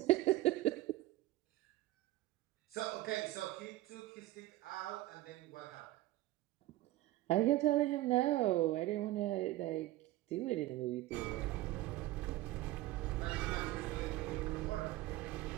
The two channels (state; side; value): quieter; left; 16.8 dB